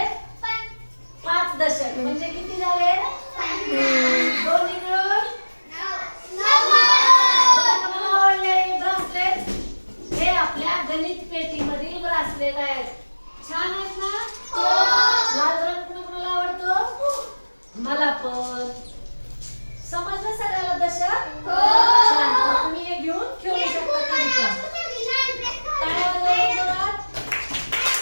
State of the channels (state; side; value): inverted; both; correlation -1.00